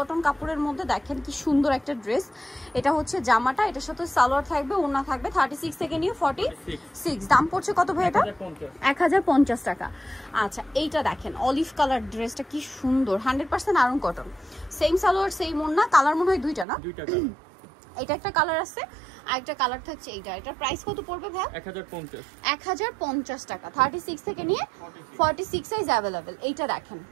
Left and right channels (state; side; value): drops out; left; at 16.7 s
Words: কাপড়ের মধ্যে, দেখেন কি সুন্দর একটা ড্রেস। এটা হচ্ছে জামাটা, এটার সাথে সালোয়ার থাকবে, ওন্না থাকবে, 36 থেকে নিয়ে 46। দাম পড়ছে কত ভাই এটা? 1050 টাকা। আচ্ছা, এইটা দেখেন অলিভ কালার ড্রেসটা কি সুন্দর, 100% Aarong cotton, same salwar same ওন্না। কালার মনে হয় দুইটা না? দুইটা কালার। এটা একটা কালার আছে, আরেকটা কালার থাকছে এইটা। এটার প্রাইস কত পড়বে ভাই? 1050 টাকা, 36 থেকে নিয়ে 46 সাইজ अवेलेबल। এইটা দেখেন,